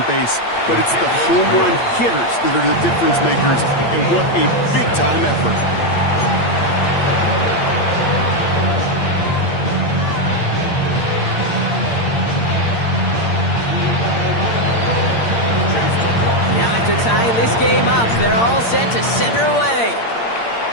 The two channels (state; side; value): late; right; 8.7 ms